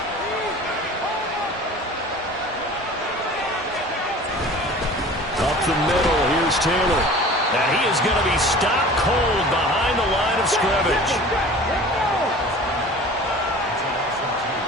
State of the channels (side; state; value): both; normal; correlation 0.42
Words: Up the middle, here's Taylor. Now he is going to be stopped cold behind the line of scrimmage.